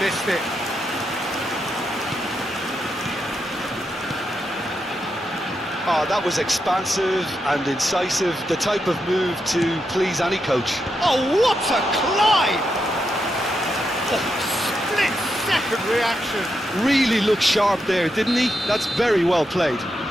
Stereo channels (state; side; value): normal; both; correlation 0.84